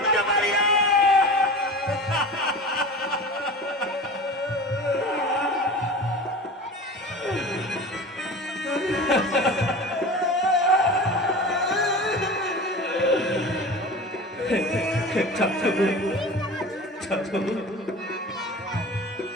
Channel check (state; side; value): normal; both; correlation 0.34